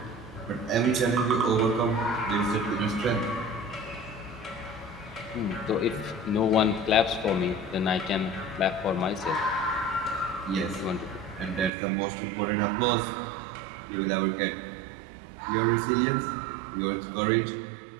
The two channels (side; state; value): left; drops out; at 11.7 s